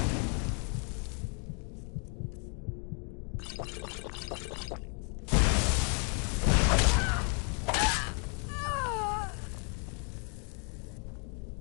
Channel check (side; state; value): right; quieter; 39.0 dB